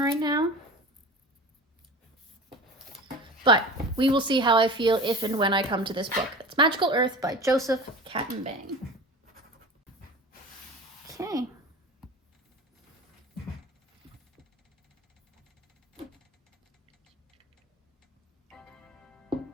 right now. But we will see how I feel if and when I come to this book. It's Magical Earth by Joseph Katenbang. Okay.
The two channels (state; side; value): normal; both; correlation 0.35